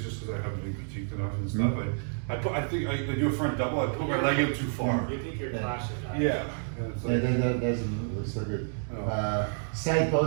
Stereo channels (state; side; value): silent; left; digital silence